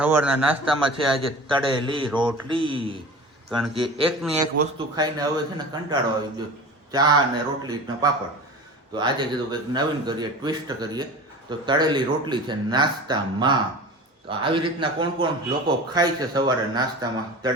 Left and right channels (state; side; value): normal; both; correlation 0.36